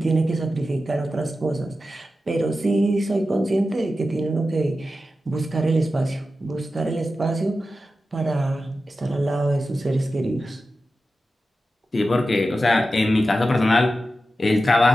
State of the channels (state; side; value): normal; both; correlation 0.92